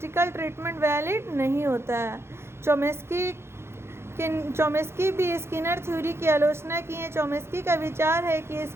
ट्रीटमेंट वैलिड नहीं होता है। चोमेस्की भी स्किनर थ्योरी की आलोचना की है। चोमेस्की का विचार है कि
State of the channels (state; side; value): late; left; 0.12 ms